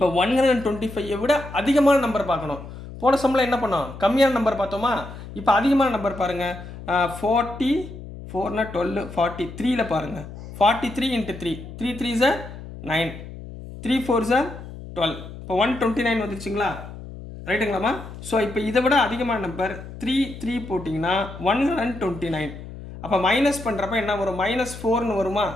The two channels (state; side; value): noise; left; hum, 13 dB below the sound